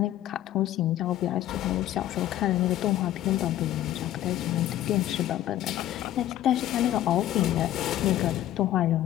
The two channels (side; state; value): right; quieter; 13.0 dB